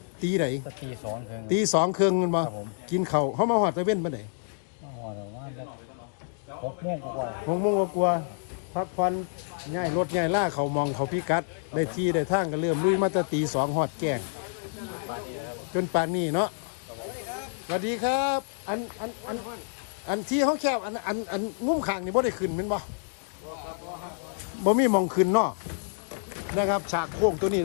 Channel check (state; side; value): silent; right; digital silence